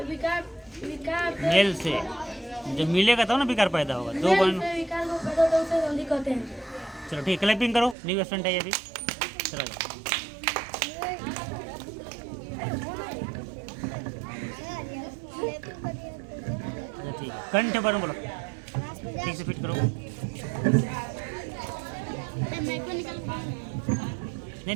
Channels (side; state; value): left; drops out; at 8.0 s